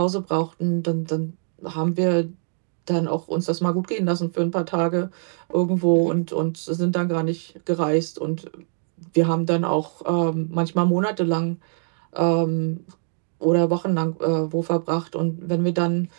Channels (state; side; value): silent; left; digital silence